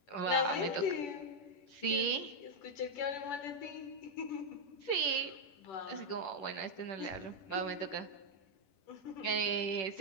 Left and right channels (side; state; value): right; late; 10 ms